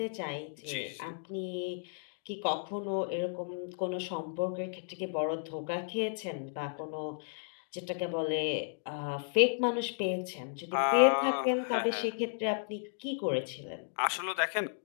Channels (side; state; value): right; silent; digital silence